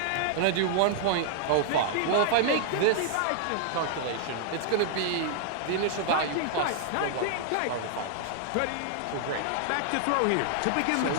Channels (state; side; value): different; both; correlation -0.01